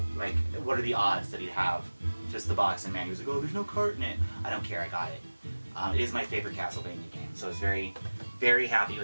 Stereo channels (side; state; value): both; inverted; correlation -1.00